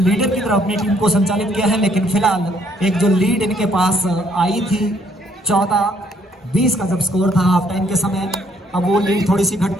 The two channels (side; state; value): both; normal; correlation 0.66